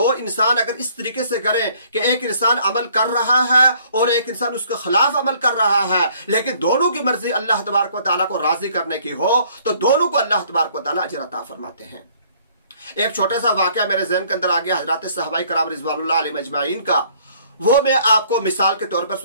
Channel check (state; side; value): inverted; both; correlation -0.60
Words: इंसान अगर इस तरीके से करें कि एक इंसान अमल कर रहा है और एक इंसान उसके खिलाफ अमल कर रहा है, लेकिन दोनों की मर्जी अल्लाह तबारक व तआला को राजी करने की हो, तो दोनों को अल्लाह तबारक व तआला अजर अता फरमाते हैं। एक छोटा सा वाकया मेरे ज़हन के अंदर आ गया हजरत सहाबाए कराम रिज़वानुल्लाह अलैहिम अजमाइन का, वो मैं आपको मिसाल के तौर पर